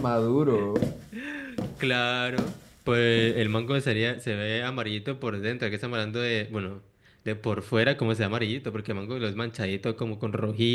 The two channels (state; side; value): identical; both; correlation 1.00